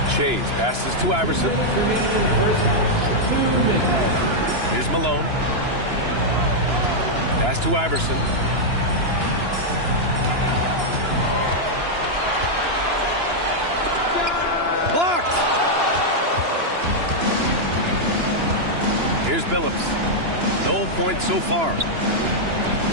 Chase passes to Iverson. Here's Malone. Pass to Iverson. Blocked! Here's Billups. No points so far.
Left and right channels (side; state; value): left; late; 2.9 ms